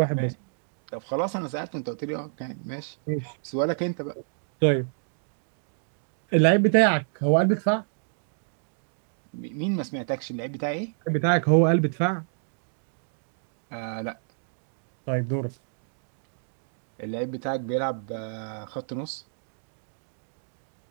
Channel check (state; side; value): silent; left; digital silence